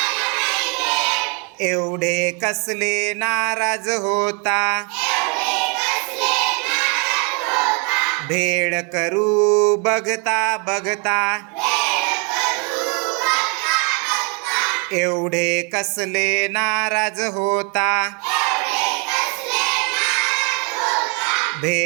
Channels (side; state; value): left; quieter; 34.6 dB